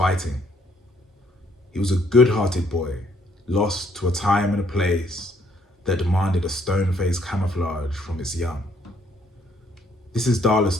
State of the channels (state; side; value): normal; both; correlation 0.67